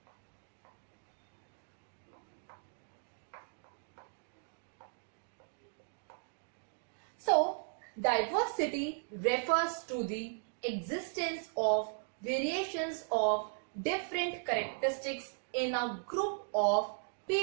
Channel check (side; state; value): left; silent; digital silence